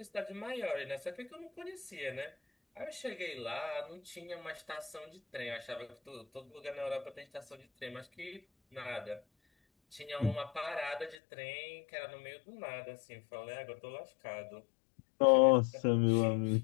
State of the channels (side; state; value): right; drops out; at 11.2 s